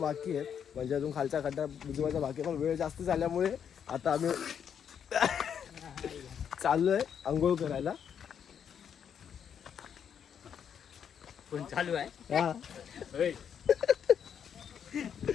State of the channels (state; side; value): quieter; right; 8.1 dB